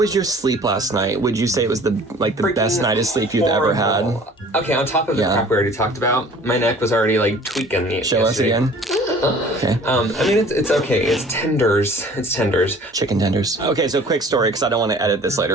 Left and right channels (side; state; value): both; normal; correlation 0.49